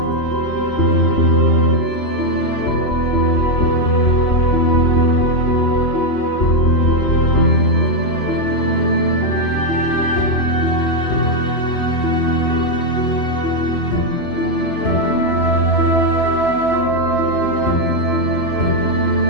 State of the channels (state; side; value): late; right; 2.9 ms